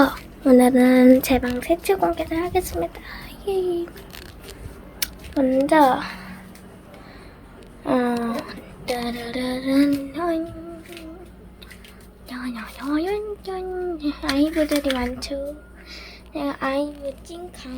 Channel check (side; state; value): both; identical; correlation 1.00